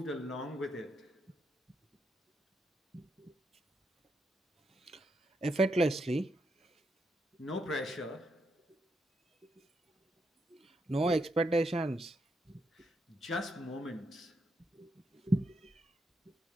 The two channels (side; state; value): both; normal; correlation 0.81